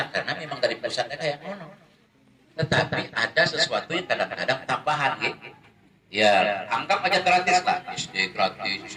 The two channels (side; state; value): both; identical; correlation 1.00